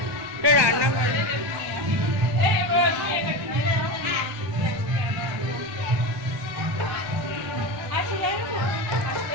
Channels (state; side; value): late; left; 1.2 ms